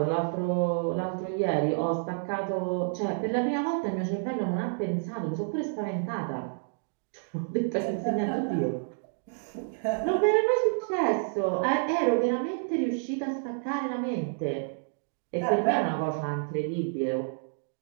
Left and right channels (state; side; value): silent; left; digital silence